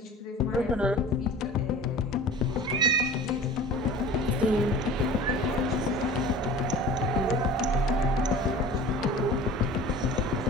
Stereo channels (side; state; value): both; normal; correlation 0.41